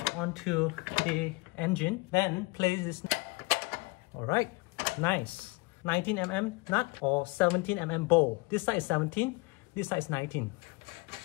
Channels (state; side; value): quieter; right; 25.3 dB